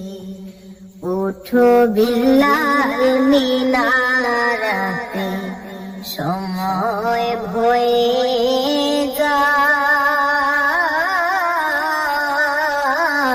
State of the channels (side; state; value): both; identical; correlation 1.00